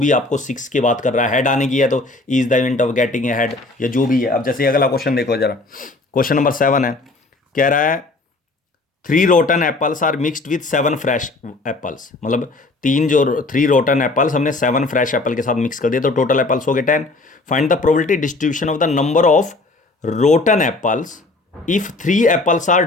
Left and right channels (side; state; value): right; quieter; 3.2 dB